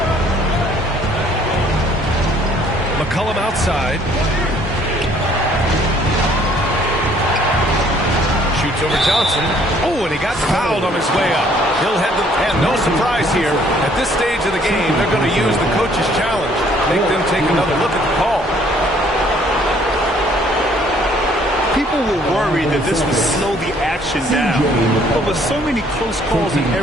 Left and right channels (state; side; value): normal; both; correlation 0.61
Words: McCollum outside. Shoots over Johnson. Oh, and he got fouled on his way up. He'll head the... And no surprise here. At this stage of the game, they're going to use the coach's challenge. Make them take another look at the call. People were worried that this would slow the action down. But with so many close calls in